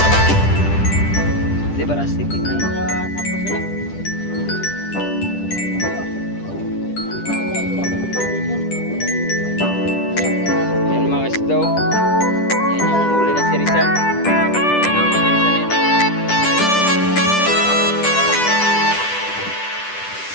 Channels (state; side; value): late; right; 10 ms